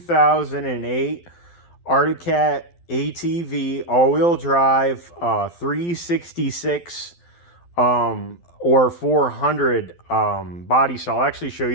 Arctic Cat ATV all-wheel drive 366 or 400 body style. I'll actually show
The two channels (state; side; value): late; right; 12 ms